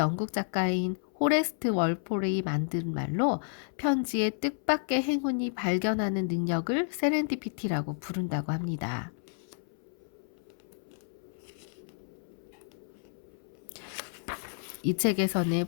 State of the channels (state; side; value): silent; right; 57 dB below the other